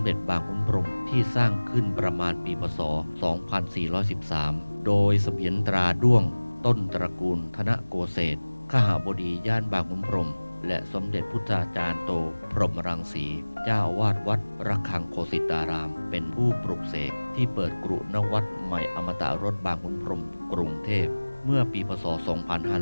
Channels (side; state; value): both; inverted; correlation -1.00